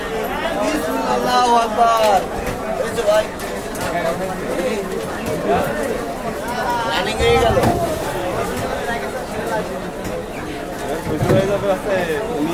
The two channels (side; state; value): both; identical; correlation 1.00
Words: Allahu Akbar. Itu baik. Running হয়ে গেল। বুঝতে হয়ে যাবে আছে